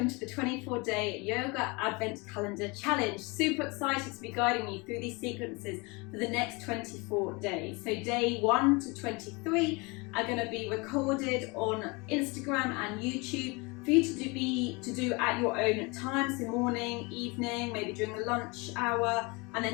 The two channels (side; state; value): right; quieter; 27.5 dB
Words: to the 24-day Yoga Advent Calendar Challenge. Super excited to be guiding you through these sequences for the next 24 days. So day 1 to 23 are going to be recorded on Instagram and YouTube for you to do at your own time, so morning, evening, maybe during the lunch hour, and